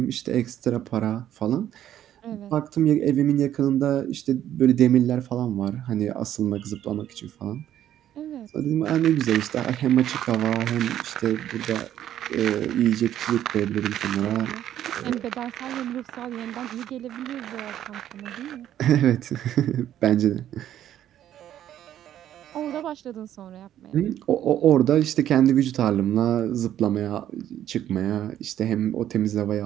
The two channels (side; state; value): left; quieter; 11.4 dB